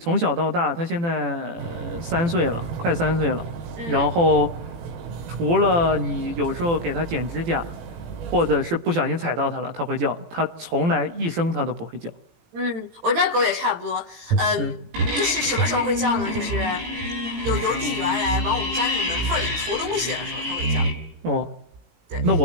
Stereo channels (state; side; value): late; left; 17 ms